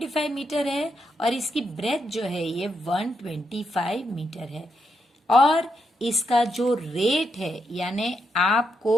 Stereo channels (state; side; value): normal; both; correlation 0.81